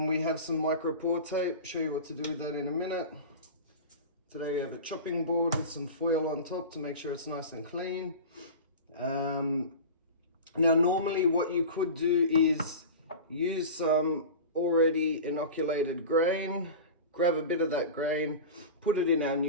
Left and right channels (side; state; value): both; inverted; correlation -0.31